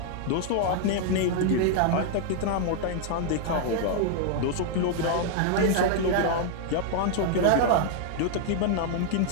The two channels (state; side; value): different; both; correlation 0.00